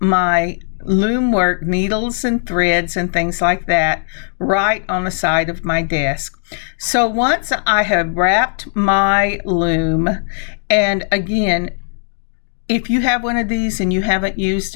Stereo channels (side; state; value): right; silent; digital silence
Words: my loom work, needles and threads and things like that, right on the side of my desk. So once I have wrapped my loom, and again, if you have one of these and you haven't used